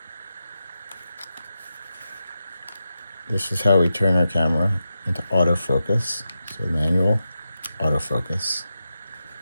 This is how we turn our camera into autofocus. So manual, autofocus.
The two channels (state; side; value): inverted; both; correlation -0.89